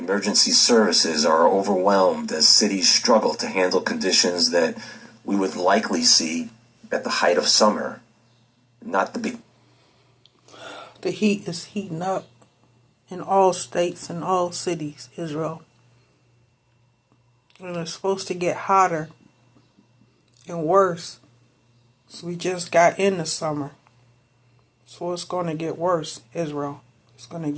services are overwhelmed as cities struggle to handle conditions that we would likely see at the height of summer, not the big. The heat is heating up in all states and all cities, Israel. And it's supposed to get hotter and worse. So we just got into summer. So it's going to get worse, Israel. It's going to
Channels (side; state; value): both; identical; correlation 1.00